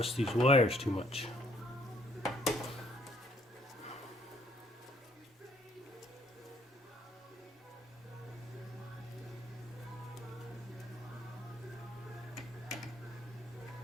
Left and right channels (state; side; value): normal; both; correlation 0.64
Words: these wires too much.